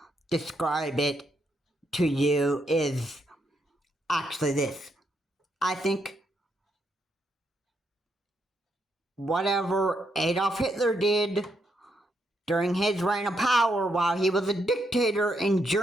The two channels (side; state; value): both; normal; correlation 0.79